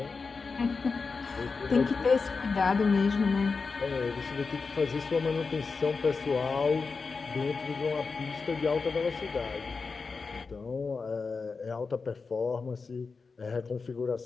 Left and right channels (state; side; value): quieter; right; 4.6 dB